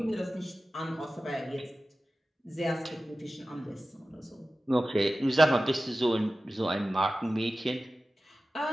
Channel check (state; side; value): normal; both; correlation 0.95